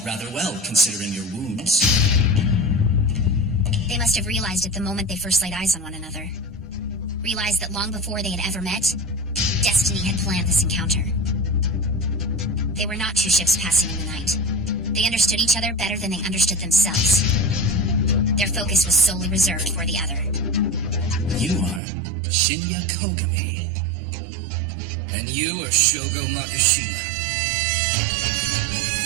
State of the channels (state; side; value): drops out; left; at 21.8 s